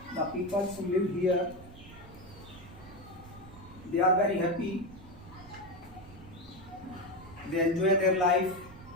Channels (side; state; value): right; noise; rumble, 18 dB below the sound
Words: the people who live here, they are very happy, they enjoy their life,